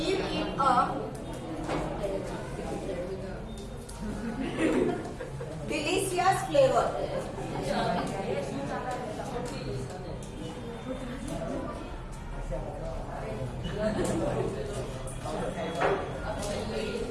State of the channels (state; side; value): identical; both; correlation 1.00